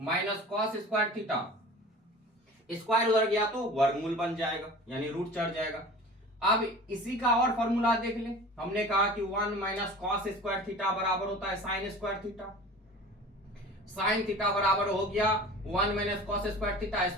cos square theta. Square उधर गया तो वर्गमूल बन जाएगा, यानी रूट चढ़ जाएगा। अब इसी का और फॉर्मूला देख ले। हमने कहा कि 1 माइनस कॉस स्क्वायर थीटा बराबर होता है sign square theta. Sine theta बराबर हो गया 1 minus cos square theta,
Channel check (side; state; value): both; normal; correlation 0.40